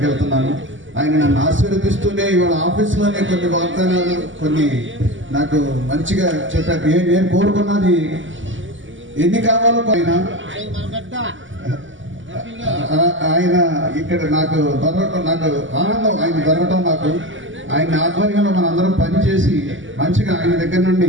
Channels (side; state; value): left; late; 0.56 ms